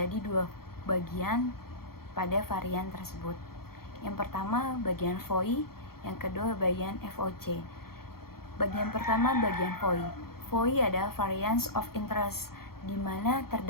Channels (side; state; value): right; late; 0.94 ms